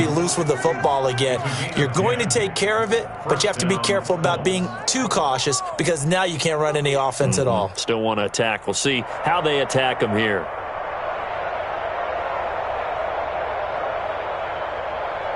loose with the football again. You're going to take care of it, but you have to be careful about being too cautious because now you can't run any offense at all. Still want to attack. We'll see how they attack them here.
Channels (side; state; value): left; noise; hum, 28 dB below the sound